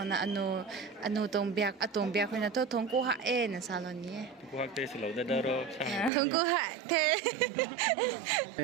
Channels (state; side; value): drops out; left; at 6.1 s